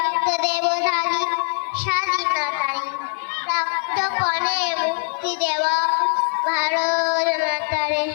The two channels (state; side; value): silent; right; digital silence